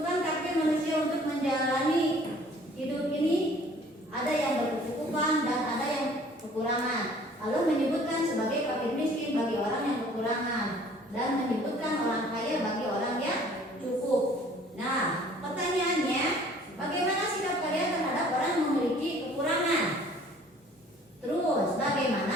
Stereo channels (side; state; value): both; normal; correlation 0.54